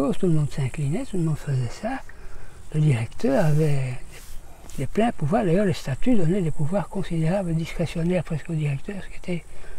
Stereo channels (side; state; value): both; identical; correlation 1.00